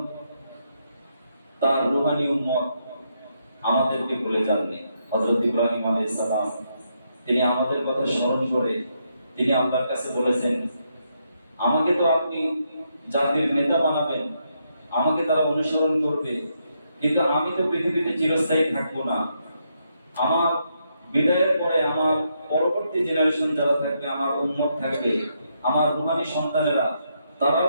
তার রূহানী উম্মত আমাদেরকে ভুলে যাননি। হযরত ইব্রাহিম আলাইহিস সালাম তিনি আমাদের কথা স্মরণ করে তিনি আল্লাহর কাছে বলেছেন, আমাকে তো আপনি জাতির নেতা বানাবেন, আমাকে তারা অনুসরণ করবে, কিন্তু আমি তো পৃথিবীতে চিরস্থায়ী থাকবো না। আমার বিদায়ের পরে আমার পরবর্তী জেনারেশন যারা থাকবে, আমার উম্মত থাকবে, আমার রূহানী সন্তানেরা, তারাও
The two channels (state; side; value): inverted; both; correlation -0.79